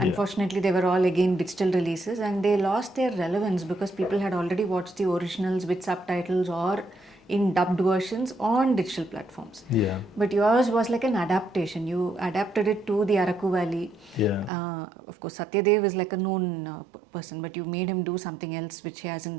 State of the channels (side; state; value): left; drops out; at 14.5 s